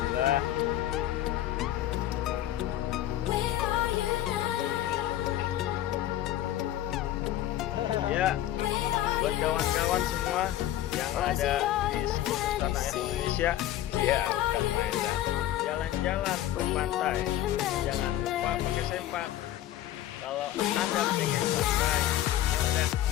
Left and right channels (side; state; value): right; quieter; 13.1 dB